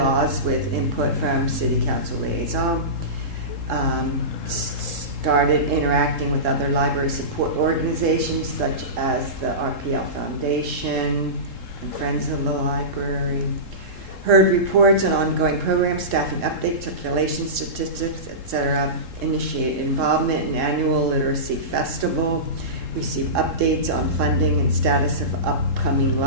with input from City Council liaison. Started interacting with other library support organizations such as the RPL Foundation and Friends of the Library. Heard reports on ongoing programs, staffing updates, circulation statistics, etc. Initiated involvement in annual literacy festival. receive updates on funding and status of upcoming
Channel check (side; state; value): left; late; 3.7 ms